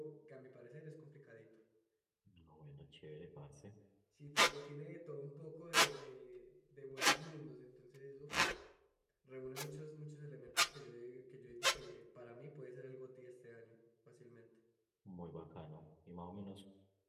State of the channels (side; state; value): both; identical; correlation 1.00